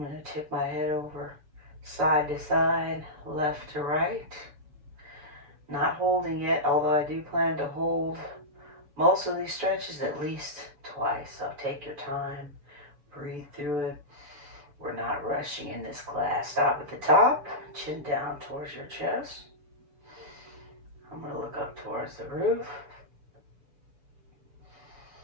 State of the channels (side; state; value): left; late; 6.9 ms